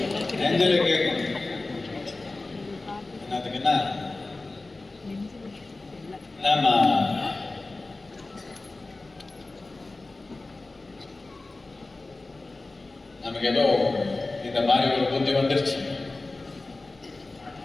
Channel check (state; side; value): quieter; right; 3.2 dB